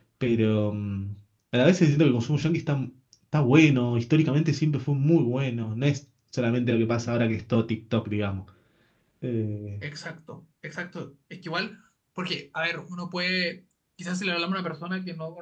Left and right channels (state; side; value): identical; both; correlation 1.00